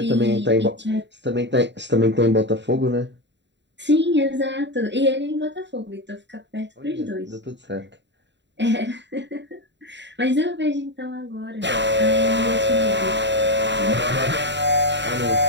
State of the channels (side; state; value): left; late; 0.52 ms